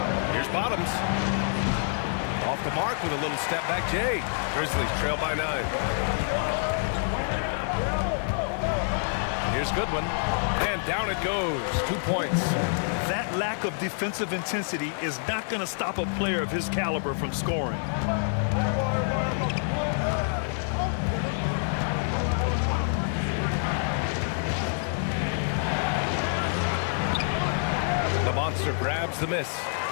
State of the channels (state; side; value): silent; right; digital silence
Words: Here's Bottoms. Off the mark with a little step back Jay. Grizzlies trail by 9. Here's Goodwin. And down it goes. 2 points. That lack of defensive intensity is not going to stop a player of his caliber from scoring. The monster grabs the miss.